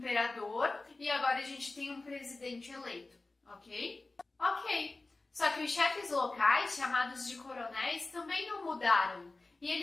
e agora a gente tem um presidente eleito, ok? Ok. Só que os chefes locais, chamados de coronéis, também não mudaram. E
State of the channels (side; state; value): right; quieter; 3.3 dB